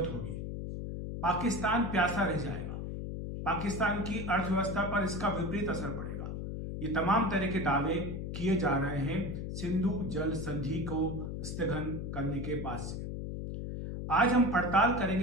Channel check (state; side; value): noise; left; hum, 5 dB below the sound